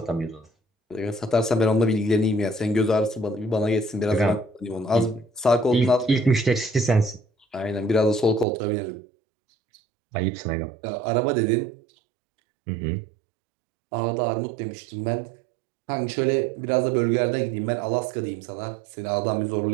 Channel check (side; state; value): left; drops out; at 8.5 s